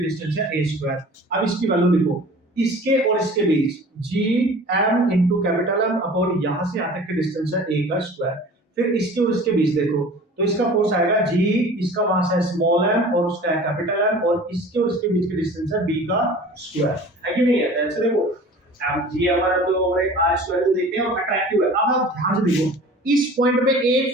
डिस्टेंस है a स्क्वायर। अब इसकी वैल्यू लिखो, इसके और इसके बीच g m into capital M upon यहां से यहां तक की डिस्टेंस है a का स्क्वायर। फिर इसके और इसके बीच देखो तो इसका फोर्स आएगा g, इसका मास है स्मॉल m और उसका है कैपिटल M, और इसके और इसके बीच की डिस्टेंस है b का स्क्वायर, है कि नहीं है। ऐसे देखो m g हमारा तो ओवर r स्क्वायर तो देखते हैं और अट्रैक्टिव है। अब आप ध्यान से देखो इस पॉइंट पे एक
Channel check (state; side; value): normal; both; correlation 0.43